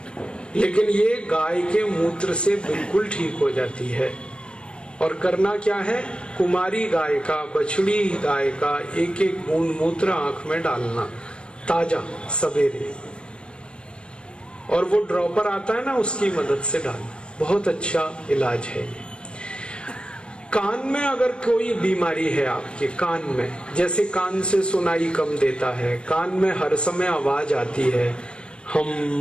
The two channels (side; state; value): right; late; 0.055 ms